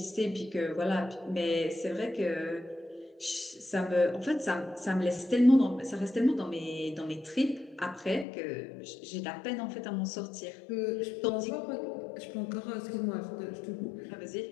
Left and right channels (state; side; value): drops out; right; at 8.2 s